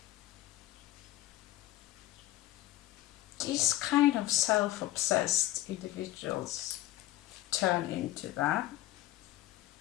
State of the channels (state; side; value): quieter; right; 15.8 dB